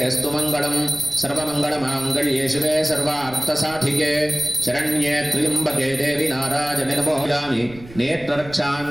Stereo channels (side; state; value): right; noise; rumble, 19 dB below the sound